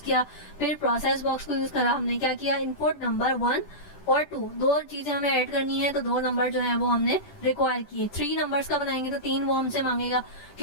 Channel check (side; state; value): right; late; 10 ms